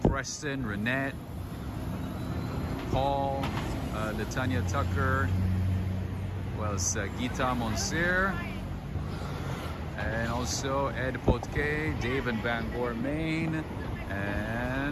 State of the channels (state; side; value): identical; both; correlation 1.00